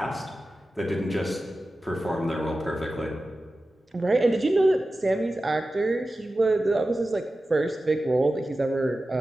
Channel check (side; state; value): both; normal; correlation 0.94